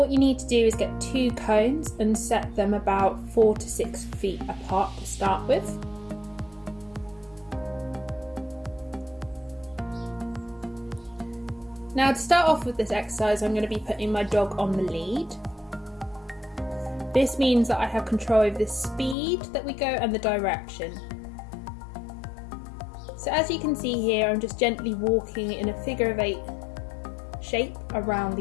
you need to do is get 2 cones and set them about 4 to 6 feet apart to start with. Now to start off with this exercise, I'm going to be putting my dog on the lead. This means that I have control over the speed that we go and the direction. So as you can see here, I'm just gently walking in a figure of 8 shape around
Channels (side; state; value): right; drops out; at 19.2 s